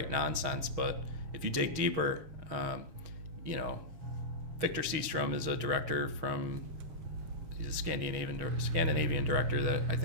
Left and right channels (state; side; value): late; left; 6.4 ms